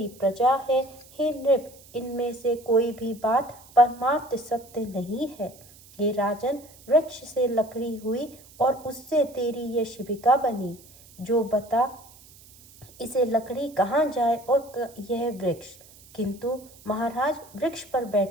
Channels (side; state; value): right; noise; hiss, 23 dB below the sound